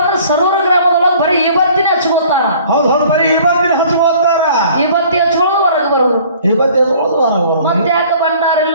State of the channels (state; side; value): inverted; both; correlation -0.52